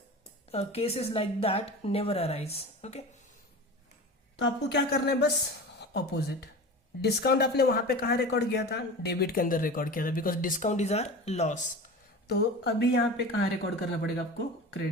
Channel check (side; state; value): both; normal; correlation 0.33